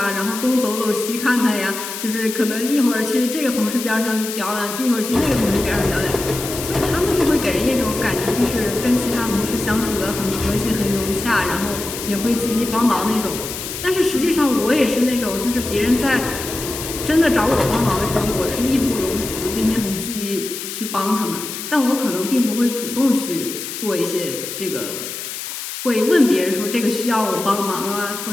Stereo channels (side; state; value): left; noise; hiss, 7 dB below the sound